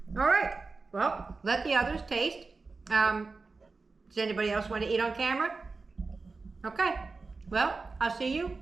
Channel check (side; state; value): left; quieter; 4.0 dB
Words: All right. Well, let the others taste. Does anybody else want to eat on camera? Okay. Well, I'll see you